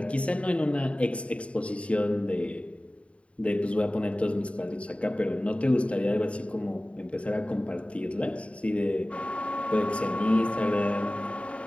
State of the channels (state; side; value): late; right; 0.062 ms